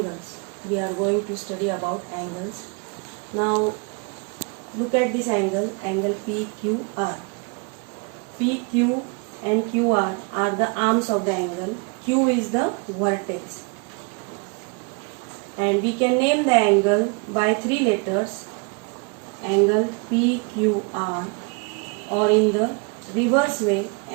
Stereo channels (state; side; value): quieter; left; 33.5 dB